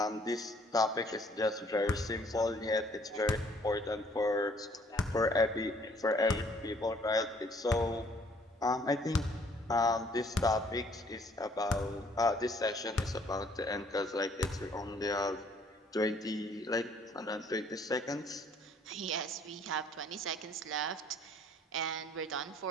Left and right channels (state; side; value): normal; both; correlation 0.61